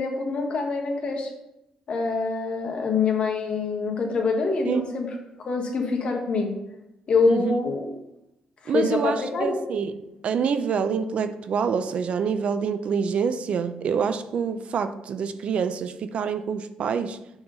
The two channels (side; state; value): both; normal; correlation 0.68